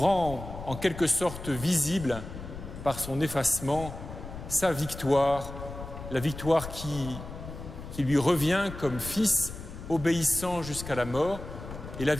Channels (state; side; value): noise; left; rumble, 11 dB below the sound